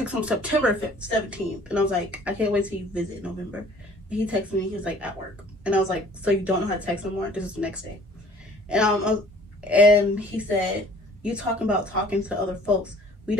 him September 17th, and I was like, I can't wait till you visit in November. And he texted me, he was like, at work. And I was like, so you don't know how to text no more? This is the next day. And he said, you talking about talking to other folks. We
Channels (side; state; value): both; normal; correlation 0.53